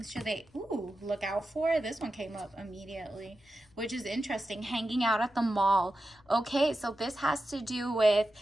should they look out for? This one came up immediately, which is interesting. Hanging out at the mall. Okay, so this has to do with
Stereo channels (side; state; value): left; noise; rumble, 29 dB below the sound